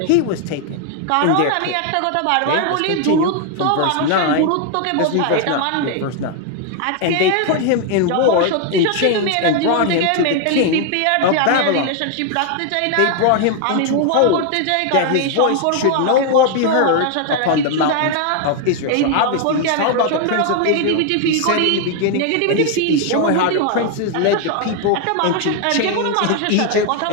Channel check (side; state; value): both; different; correlation 0.00